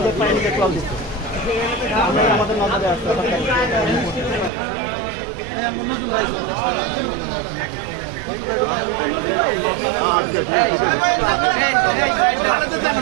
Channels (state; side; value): drops out; left; at 4.5 s